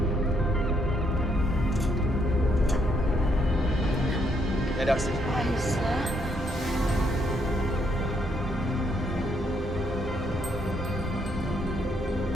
Ya Darsi. Aisyah.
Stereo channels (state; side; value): normal; both; correlation 0.73